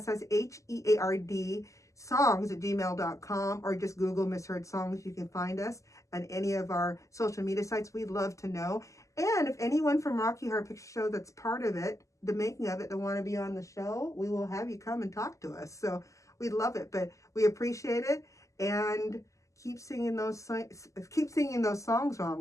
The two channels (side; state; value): right; late; 0.16 ms